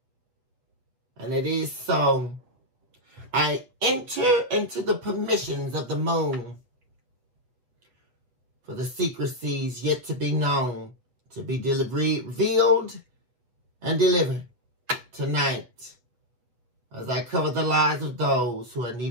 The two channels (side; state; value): left; late; 8.1 ms